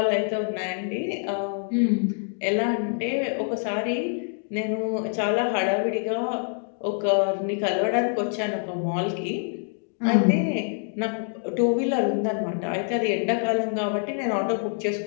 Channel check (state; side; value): silent; right; 61 dB below the other